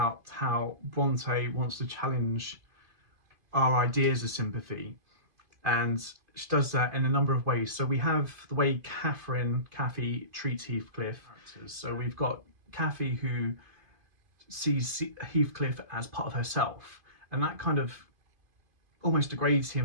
how Brontë wants to challenge our ideas of sympathy, and she does that in a number of ways. So we have the way Cathy treats Heathcliff. So we've got Cathy who sees Heathcliff as part of herself, and that kind of almost degrades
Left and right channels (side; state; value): left; late; 2.5 ms